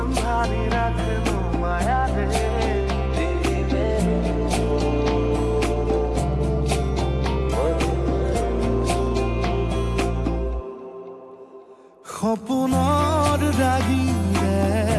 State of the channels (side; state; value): both; identical; correlation 1.00